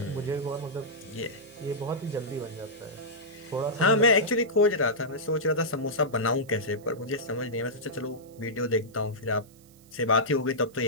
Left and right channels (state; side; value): noise; right; hiss, 27 dB below the sound